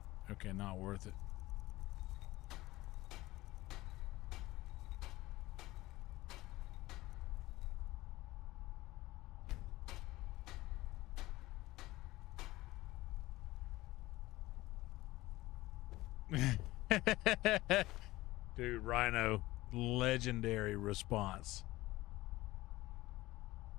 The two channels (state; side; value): quieter; right; 18.3 dB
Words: Okay, not worth it. Dude, Rhino, legendary response.